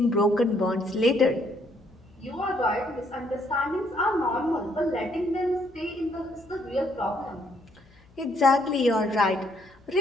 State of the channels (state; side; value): noise; left; hum, 28 dB below the sound